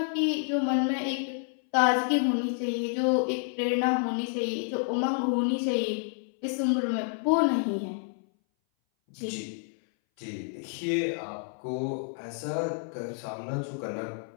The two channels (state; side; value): silent; right; 58 dB below the other